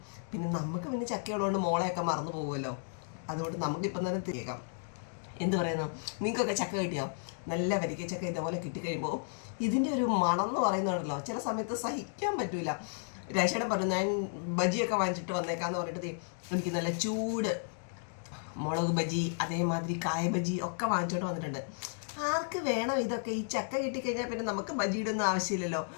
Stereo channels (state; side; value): silent; right; digital silence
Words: പിന്നെ നമുക്ക് പിന്നെ ചക്കയുള്ളതുകൊണ്ട് മോളെയൊക്കെ മറന്നു പോകുമല്ലോ. അതുകൊണ്ട് നമുക്കിപ്പം തന്നെ തിരിക്കാം. എന്ത് പറയുന്നു, നിങ്ങൾക്കൊക്കെ ചക്ക കിട്ടിയോ? നല്ല വരിക്ക ചക്ക ഇതേപോലെ കിട്ടിക്കഴിയുമ്പോൾ ഇതിൻ്റെ ഒരു മണം എന്ന് പറയുന്നുണ്ടല്ലോ, ചില സമയത്ത് സഹിക്കാൻ പറ്റൂല. രേഷയുടെ പറഞ്ഞു, ഞാൻ ബജിയൊക്കെ വാങ്ങിച്ചിട്ട് വന്നേക്കാന്ന് പറഞ്ഞിട്ട് എനിക്ക് നല്ല ചൂട് മുളക് ബജി, അതേമാതിരി കായ ബജി ഒക്കെ വാങ്ങിച്ചോണ്ട് വന്നിട്ടുണ്ട്. ആർക്ക് വേണം ഇതൊക്കെ? ഈ ചക്ക കിട്ടിക്കഴിഞ്ഞാൽ പിന്നെ നമുക്ക് ബജിയുടെ ഒന്നും ആവശ്യമില്ലല്ലോ.